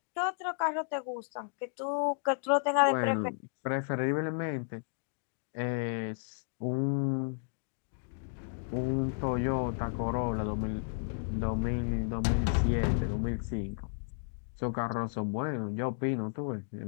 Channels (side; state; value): right; silent; digital silence